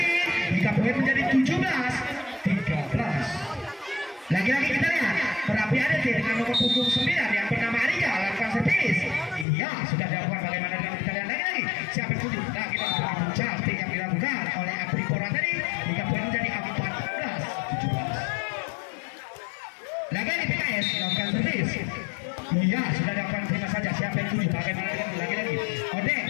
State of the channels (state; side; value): drops out; right; at 9.5 s